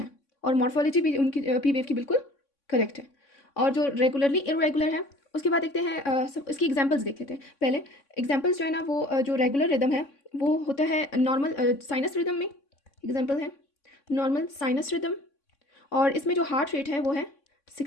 और मॉर्फोलॉजी भी उनकी पी वेव की बिल्कुल करेक्ट है। और जो रेगुलरली इरेगुलर है उसके बाद देखते हैं सब इसकी एग्जांपल्स देख लेते हैं। पहले एग्जांपल्स जो है ना वो जो रेगुलर रिदम है वो होता है नॉर्मल साइनस रिदम में। एग्जांपल है नॉर्मल साइनस रिदम, और इसमें जो हार्ट रेट है वो है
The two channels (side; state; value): right; late; 3.6 ms